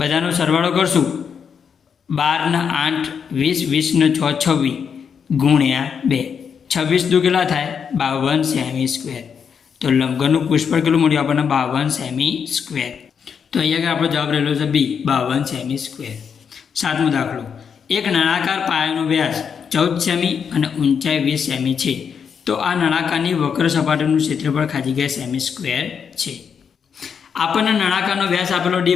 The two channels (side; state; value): right; quieter; 6.9 dB